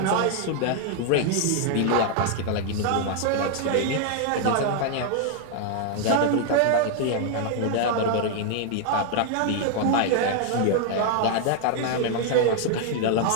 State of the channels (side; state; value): both; different; correlation 0.00